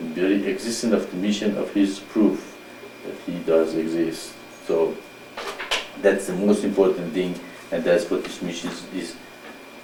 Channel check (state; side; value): identical; both; correlation 1.00